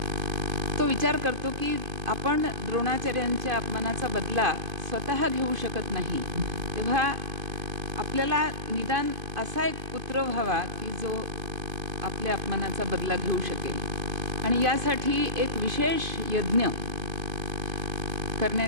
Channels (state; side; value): late; left; 2.5 ms